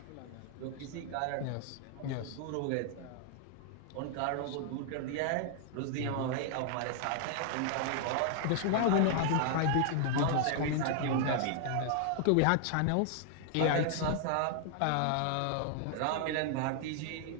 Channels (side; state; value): both; different; correlation 0.00